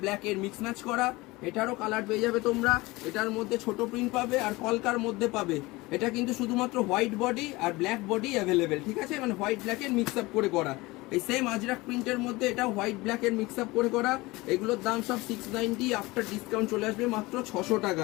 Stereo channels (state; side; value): quieter; right; 21.6 dB